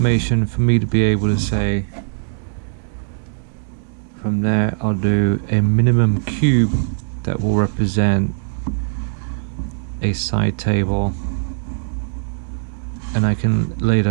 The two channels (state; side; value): silent; left; digital silence